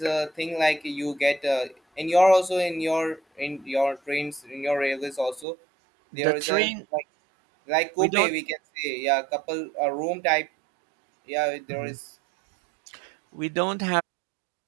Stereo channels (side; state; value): left; drops out; at 5.5 s